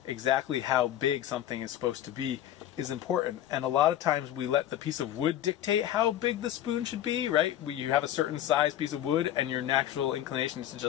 exactly how big something is supposed to be is important. And a lot of times we let the piece of wood dictate how big the spoon should be, right? You have a certain size piece of wood and your natural inclination is to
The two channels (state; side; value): quieter; right; 12.0 dB